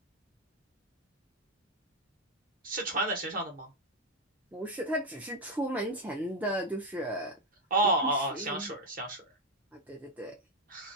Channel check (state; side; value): normal; both; correlation 0.05